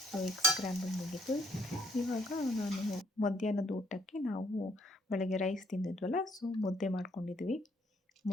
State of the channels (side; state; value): both; normal; correlation 0.67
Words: ಸೊ ಎಗ್ ಸ್ಕ್ರ್ಯಾಂಬಲ್ ಮುಗೀತು. ಇವಾಗ ನಾನು ಮಧ್ಯಾಹ್ನದ ಊಟಕ್ಕೆ ನಾವು ಬೆಳಗ್ಗೆ ರೈಸ್ ತಿಂದಿದ್ವಲ್ಲ, ಸೊ ಮುದ್ದೆ ಮಾಡ್ಕೊಂಡಿದ್ವಿ.